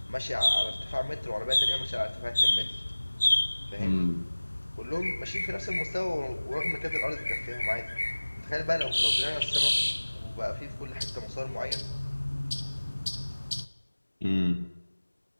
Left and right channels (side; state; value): both; inverted; correlation -1.00